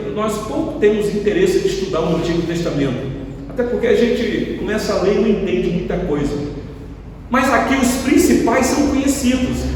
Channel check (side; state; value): both; identical; correlation 1.00